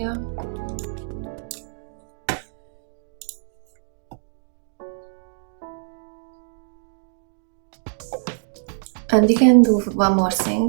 And we can do one more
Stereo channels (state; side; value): silent; left; digital silence